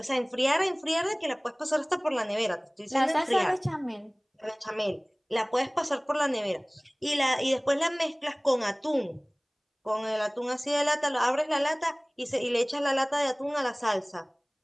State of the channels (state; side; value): identical; both; correlation 1.00